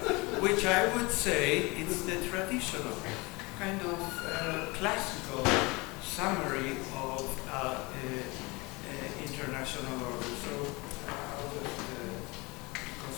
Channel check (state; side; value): quieter; right; 25.3 dB